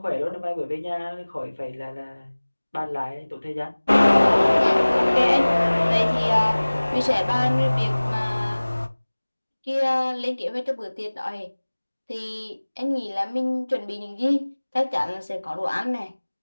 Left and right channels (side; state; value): both; inverted; correlation -1.00